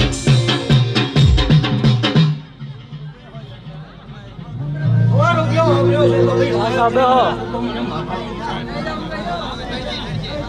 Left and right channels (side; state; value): both; identical; correlation 1.00